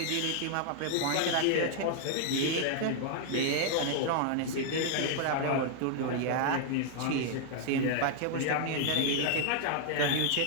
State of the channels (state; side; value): different; both; correlation 0.00